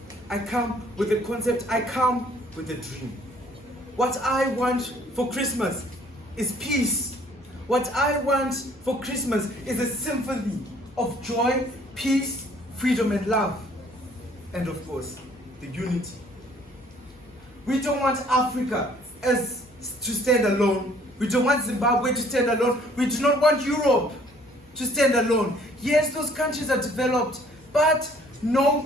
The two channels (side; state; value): both; normal; correlation 0.59